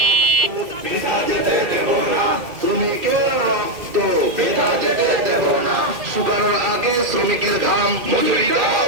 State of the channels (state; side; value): late; left; 2.2 ms